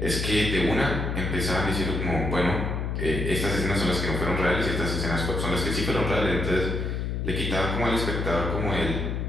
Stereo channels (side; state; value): left; noise; hum, 2 dB below the sound